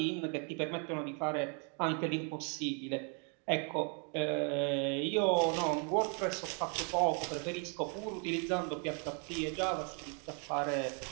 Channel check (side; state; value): left; quieter; 38.7 dB